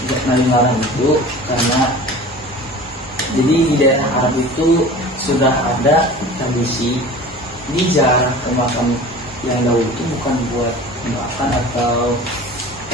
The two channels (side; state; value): both; normal; correlation 0.40